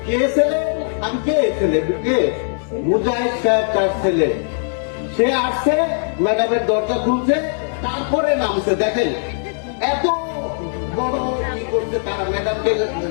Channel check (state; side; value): silent; right; digital silence